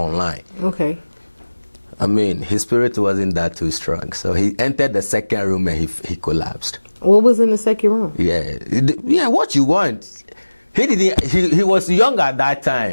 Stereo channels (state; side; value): inverted; both; correlation -1.00